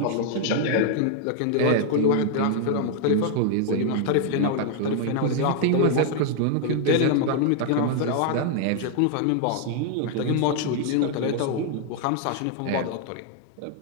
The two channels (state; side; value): different; both; correlation 0.00